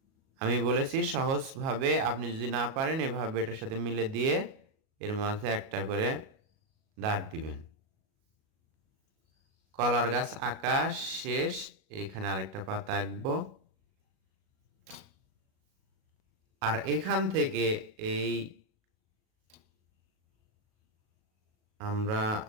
আমি বলেছি সহজভাবে, আপনি যদি না পারেন এভাবে এটার সাথে মিলে দিয়ে এর মাঝে একটা করে দাগ দিবেন। কলার গাছ আঁকা শেষ। এখানে আরেকটা পাতা আঁকবো। আর এখান থেকে এই আমরা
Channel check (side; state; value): left; late; 37 ms